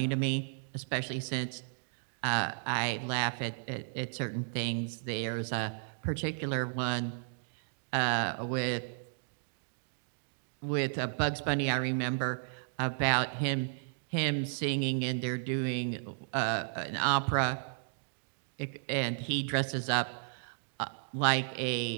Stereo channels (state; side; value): silent; left; digital silence